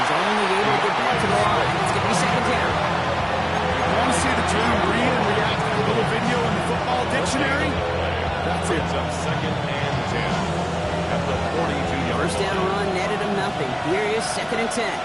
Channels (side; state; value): both; identical; correlation 1.00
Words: only able to get back to the line. It's going to be 2nd down. You want to see the term read and react to the little video in the football dictionary? That's it. Up 2nd and 10 at the 42-yard 1st down run netted him nothing. Here is 2nd and 10.